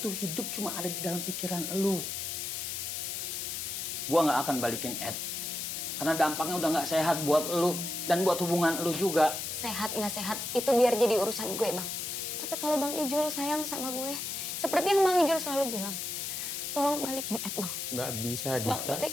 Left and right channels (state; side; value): noise; left; hiss, 4 dB below the sound